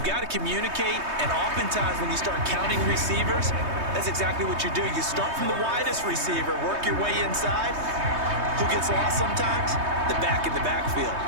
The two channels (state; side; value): late; left; 3.2 ms